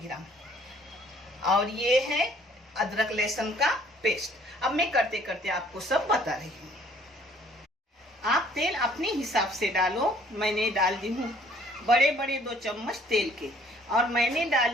ग्राम। और ये है अदरक लहसुन का पेस्ट। अब मैं करते करते आपको सब बता रही हूँ। आप तेल अपने हिसाब से डालो। मैंने डाल दी हूँ बड़े बड़े 2 चम्मच तेल के, और मैंने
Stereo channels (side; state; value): both; normal; correlation 0.59